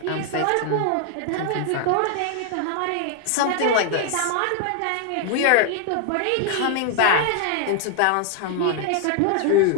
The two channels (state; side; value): different; both; correlation 0.00